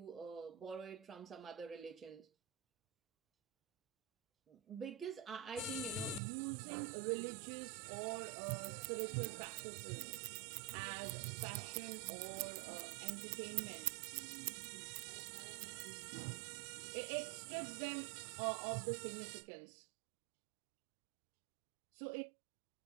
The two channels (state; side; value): drops out; left; at 6.2 s